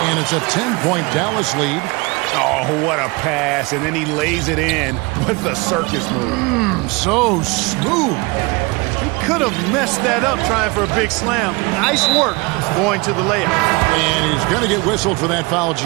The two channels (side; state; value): left; quieter; 26.1 dB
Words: And it's a 10-point Dallas lead. Oh, what a pass. And then he lays it in with the circus move. So smooth. He could have messed that up trying for a big slam. Nice work going to the layup. And he's going to get whistled for that foul,